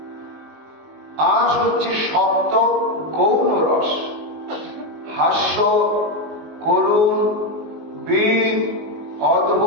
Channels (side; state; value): left; late; 19 ms